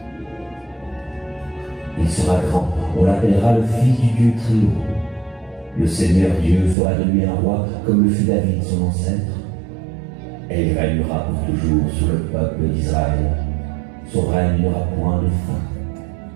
Il sera grand, on l'appellera le Fils du Dieu très haut. Le Seigneur Dieu fera de lui un roi comme le fut David son ancêtre. Et il régnera pour toujours sur le peuple d'Israël. Son règne n'aura point de fin.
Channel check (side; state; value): left; drops out; at 6.8 s